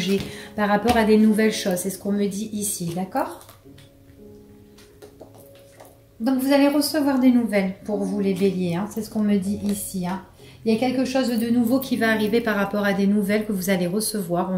par rapport à des nouvelles choses, c'est ce qu'on me dit ici, d'accord? Donc vous allez recevoir des nouvelles pour vous les béliers, hein, c'est ce qu'on me dit ici, hein. Il y a quelque chose de nouveau qui va arriver par rapport à des nouvelles que vous allez recevoir. On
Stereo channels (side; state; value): both; identical; correlation 1.00